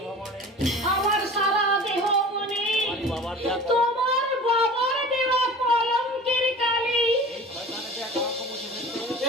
আমার সারা দেহ মনে তোমার বাবার দেওয়া কলঙ্কের কালি।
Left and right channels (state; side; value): normal; both; correlation 0.39